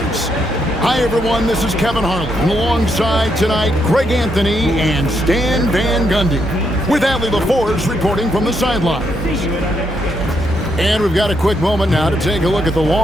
Hi, everyone. This is Kevin Harlan. And alongside tonight, Greg Anthony and Stan Van Gundy, with Allie LaForce reporting from the sidelines. And we've got a quick moment now to take a look at the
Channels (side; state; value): both; normal; correlation 0.78